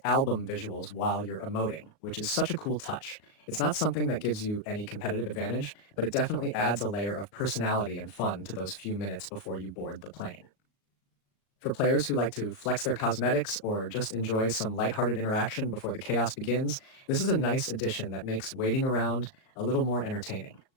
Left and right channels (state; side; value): late; right; 38 ms